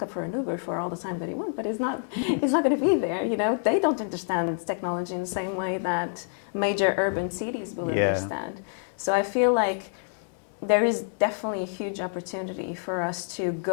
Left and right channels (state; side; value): silent; right; digital silence